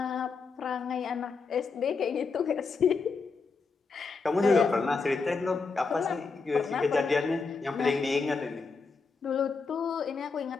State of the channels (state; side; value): quieter; right; 4.6 dB